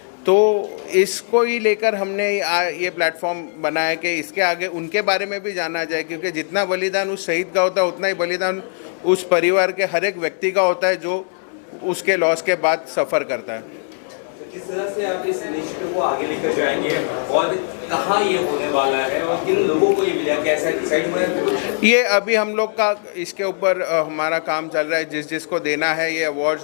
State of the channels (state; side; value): silent; right; digital silence